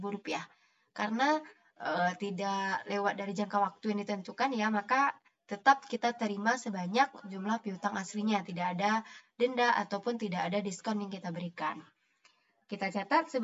Karena tidak lewat dari jangka waktu yang ditentukan ya, maka tetap kita terima sebanyak jumlah piutang aslinya, tidak ada denda ataupun tidak ada diskon yang kita berikan. Kita catat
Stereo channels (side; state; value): both; identical; correlation 1.00